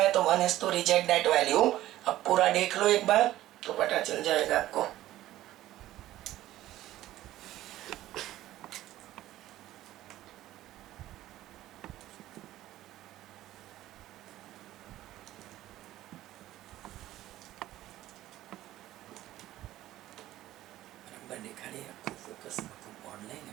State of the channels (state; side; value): quieter; left; 14.6 dB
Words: तो 1 has to reject that value. अब पूरा देख लो एक बार तो पता चल जाएगा आपको. दिखा रही है आपको, फोकस ऑनलाइन है,